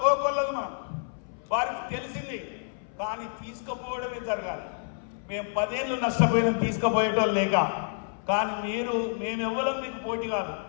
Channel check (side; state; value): right; silent; 59 dB below the other